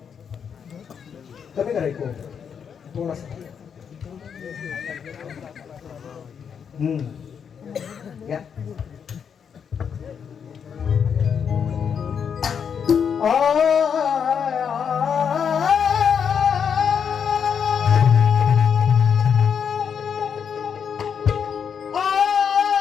कमी करायचं थोडासा या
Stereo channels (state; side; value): quieter; right; 7.2 dB